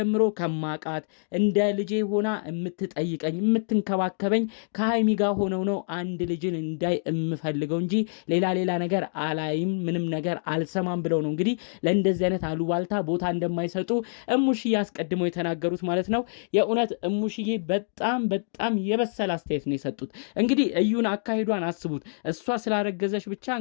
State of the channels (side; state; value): right; silent; digital silence